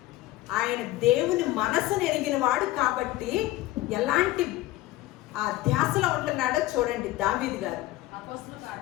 ఆయన దేవుని మనసును ఎరిగిన వాడు కాబట్టి ఎలాంటి ఆ ధ్యాసలో ఉంటున్నాడో చూడండి దావీదు గారు.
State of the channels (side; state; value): right; quieter; 16.8 dB